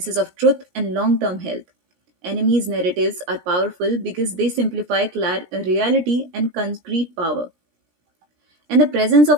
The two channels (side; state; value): left; late; 17 ms